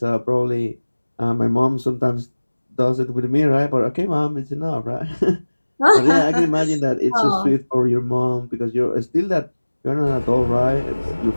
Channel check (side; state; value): both; inverted; correlation -1.00